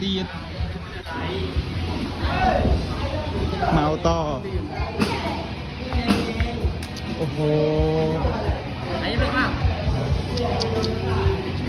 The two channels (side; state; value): both; identical; correlation 1.00